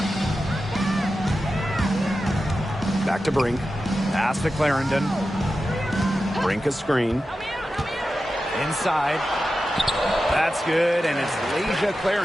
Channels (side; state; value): both; normal; correlation 0.92